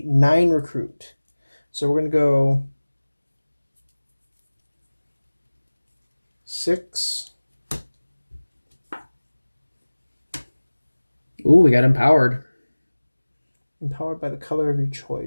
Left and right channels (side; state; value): both; inverted; correlation -1.00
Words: 9 recruit. So we're gonna go 6. Ooh, we got empowered. Empowered by the color of your